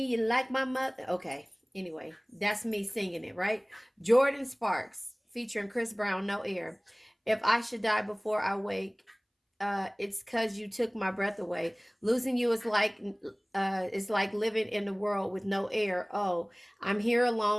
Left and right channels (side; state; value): both; identical; correlation 1.00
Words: You like my mother. Okay, anyway, that's me singing it, right? Jordan Sparks featuring Chris Brown, No Air. If I should die before I wake, it's cause you took my breath away. Losing you is like living in the world with no air. Oh, I'm here